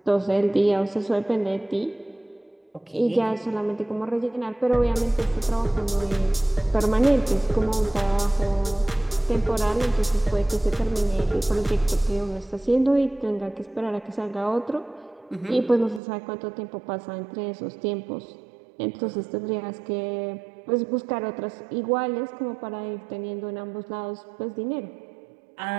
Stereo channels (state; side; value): drops out; left; at 16.0 s